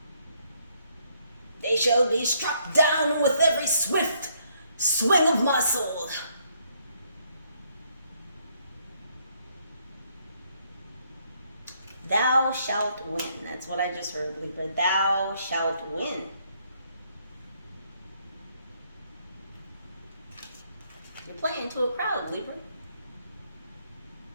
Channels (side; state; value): both; inverted; correlation -0.71